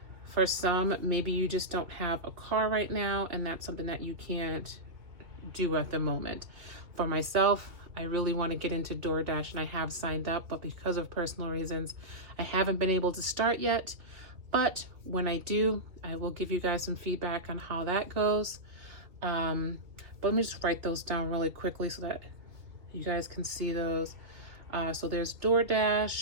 for some, maybe you just don't have a car right now, and that's something that you can't do at the moment. For myself, I really want to get into DoorDash, and I have signed up, but because of personal reasons, I haven't been able to start yet. But when I do, I will give you guys some feedback on how that goes. But let me just write those down really quickly so that you guys can see those. So there's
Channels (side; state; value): left; late; 2.8 ms